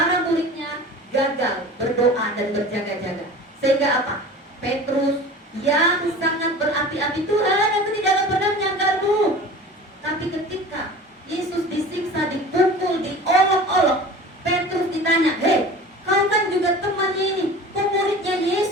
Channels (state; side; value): normal; both; correlation 0.39